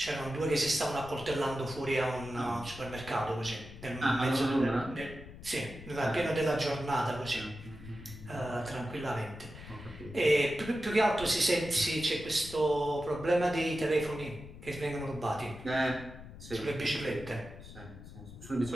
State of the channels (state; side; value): noise; left; rumble, 15 dB below the sound